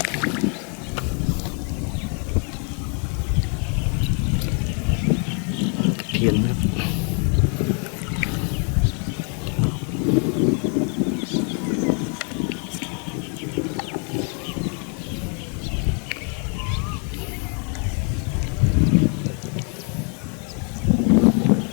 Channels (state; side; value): quieter; right; 39.2 dB